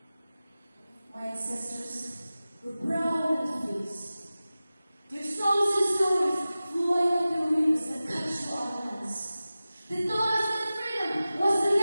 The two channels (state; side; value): inverted; both; correlation -0.96